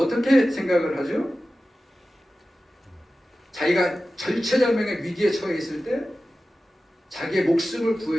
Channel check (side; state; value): both; normal; correlation 0.95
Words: 생각을 하죠? 자기가 절체절명의 위기에 처해 있을 때 자기의 목숨을